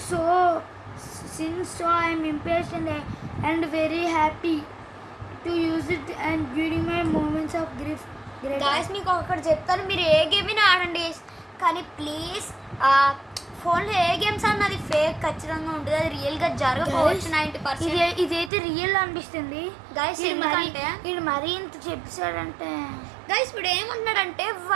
since, so I am impatient and very happy to use it and during my moments of grief. Guys మీకు ఒకటి చెప్తాను మీరు ఏ గేమ్ అయినా ఆడండి కానీ ప్లీజ్ ఫోన్లో ఏ గేమ్స్ అన్నది ఫేక్ ఖచ్చితంగా ఉంటుంది అది రియల్గా జరగకపోవచ్చు 90%. ఇదైతే రియల్ అనిపిస్తుంది Guys, ఎందుకంటే ఇది మరీ ఇంత చెప్పాడంటే గైస్ ఇప్పుడు ఏమంటున్నాడంటే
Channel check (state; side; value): drops out; left; at 18.5 s